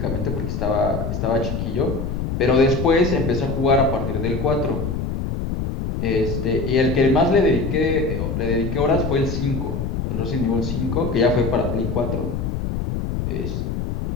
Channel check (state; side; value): noise; left; rumble, 2 dB below the sound